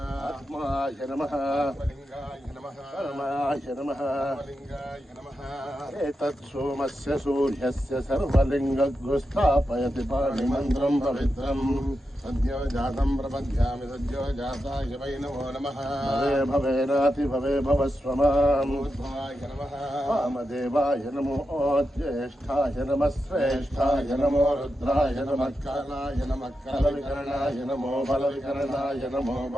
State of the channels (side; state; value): both; normal; correlation 0.88